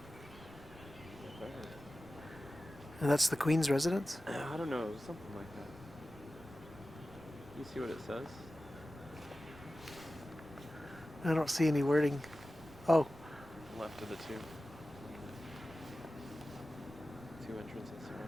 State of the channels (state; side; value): noise; right; rumble, 19 dB below the sound